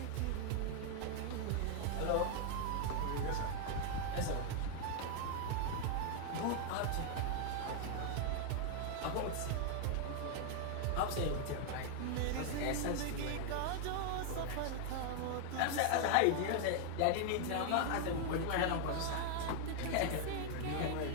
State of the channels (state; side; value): different; both; correlation 0.00